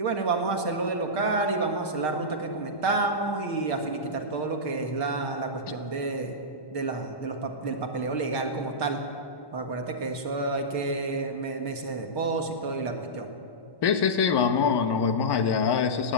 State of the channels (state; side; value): late; right; 1.1 ms